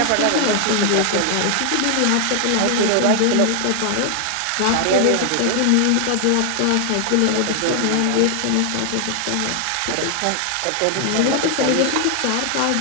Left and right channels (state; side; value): different; both; correlation 0.00